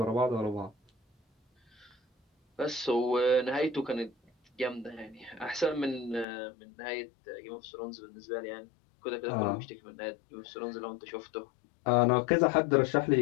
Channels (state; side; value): drops out; right; at 6.2 s